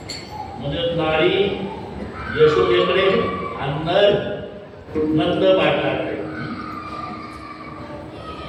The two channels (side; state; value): both; identical; correlation 1.00